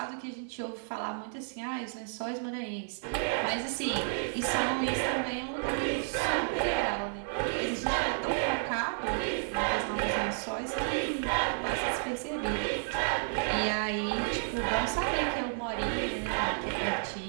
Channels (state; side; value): silent; left; digital silence